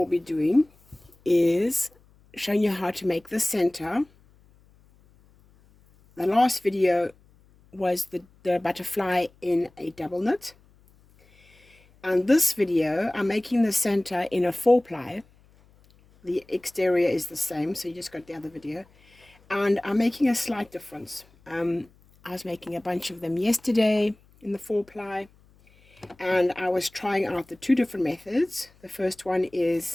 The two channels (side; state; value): left; noise; hum, 30 dB below the sound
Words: be doing is showing you how to make the center. The last video was the butterfly in a double knit. And this video, I'm making the center in a 4-ply. The exterior is the same, so you just got the other video. And I'm making a slight difference. I was making a bunch of them yesterday in the 4-ply, and I was trying out the two different methods. The first one